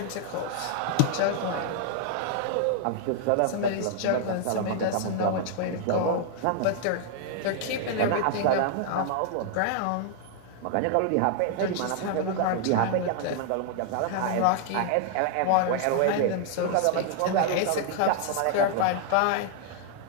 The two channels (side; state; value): both; different; correlation 0.00